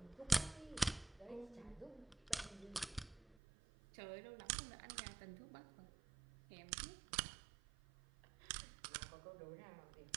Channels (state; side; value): drops out; left; at 3.4 s